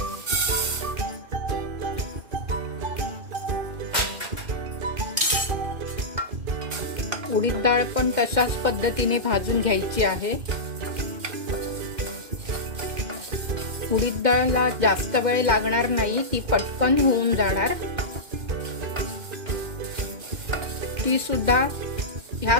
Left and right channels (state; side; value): late; left; 2.0 ms